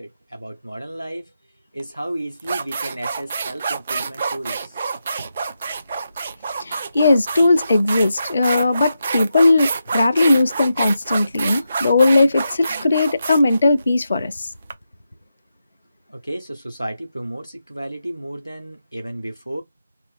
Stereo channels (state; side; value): inverted; both; correlation -0.87